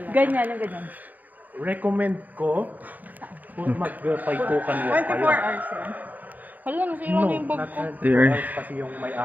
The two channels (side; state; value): left; late; 0.082 ms